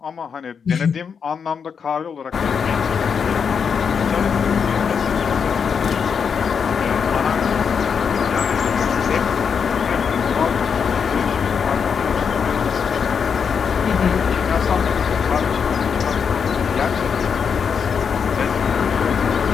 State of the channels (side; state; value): right; quieter; 6.5 dB